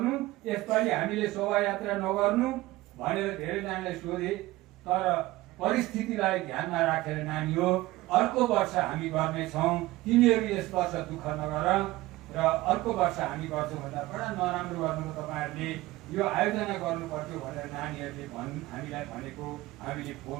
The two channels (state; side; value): quieter; left; 18.4 dB